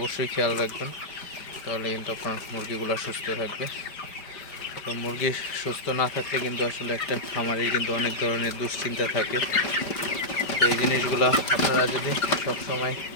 খেয়াল রাখবেন, তাহলে কিন্তু আপনার মুরগিগুলো সুস্থ থাকবে। তো মুরগি সুস্থ না থাকলে কিন্তু আসলে একটা খামারের কিন্তু অনেক ধরনের দুশ্চিন্তা থাকে। তো এই জিনিসগুলো আপনারা যদি সবসময়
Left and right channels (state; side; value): late; right; 5.1 ms